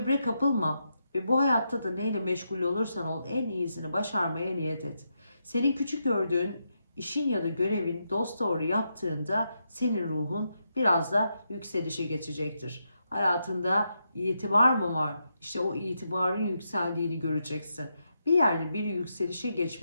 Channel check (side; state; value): both; inverted; correlation -0.84